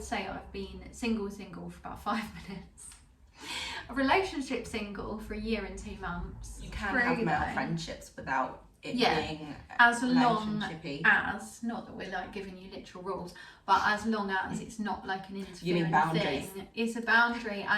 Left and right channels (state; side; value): identical; both; correlation 1.00